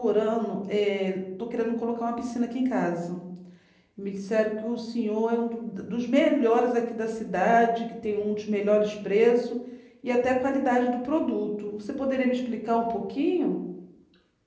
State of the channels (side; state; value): both; identical; correlation 1.00